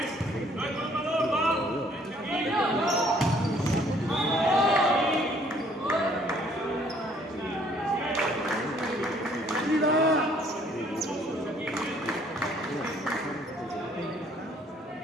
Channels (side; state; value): both; normal; correlation 0.61